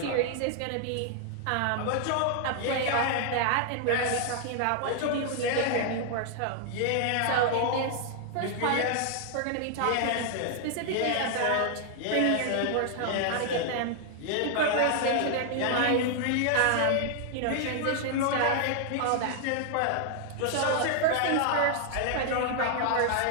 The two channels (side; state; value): both; different; correlation 0.00